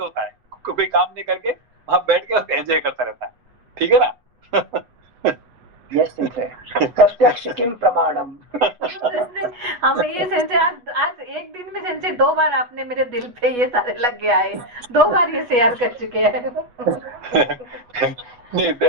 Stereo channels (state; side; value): late; left; 8.2 ms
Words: है, कोई काम नहीं करके वहां बैठ के एंजॉय करता रहता है, ठीक है ना। यस सेंसे, प्रत्यक्ष किम प्रमाणम। हम ये सेंसे आज एक दिन में सेंसे 2 बार आपने मेरे दिल पे ये सारे लग गया है, 2 बार ये शेयर कर चुके हैं। नहीं